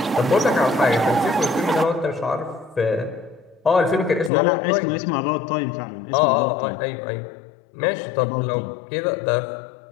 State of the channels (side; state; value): right; drops out; at 4.3 s